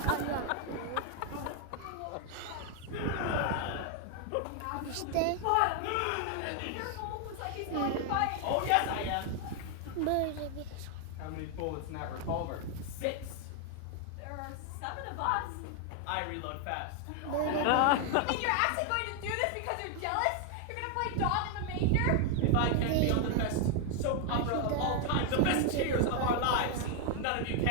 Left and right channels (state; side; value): different; both; correlation 0.00